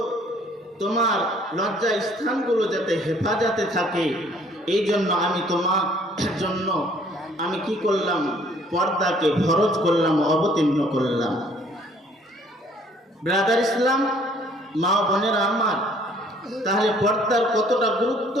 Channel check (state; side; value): normal; both; correlation 0.59